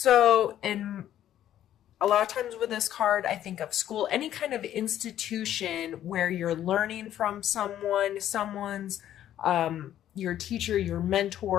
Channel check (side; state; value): right; quieter; 11.6 dB